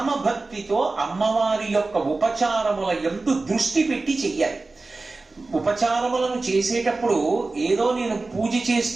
భక్తితో అమ్మవారి యొక్క ఉపచారముల యందు దృష్టి పెట్టి చెయ్యాలి. ఉపచారములను చేసేటప్పుడు ఏదో నేను పూజ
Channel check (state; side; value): quieter; left; 3.5 dB